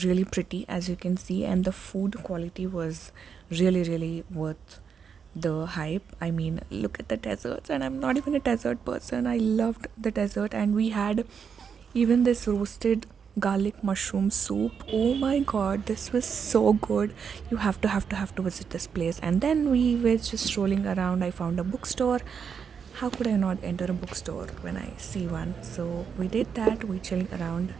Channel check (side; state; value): left; quieter; 6.7 dB